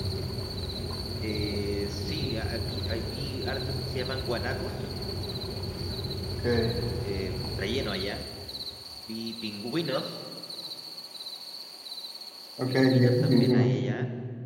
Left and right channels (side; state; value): both; identical; correlation 1.00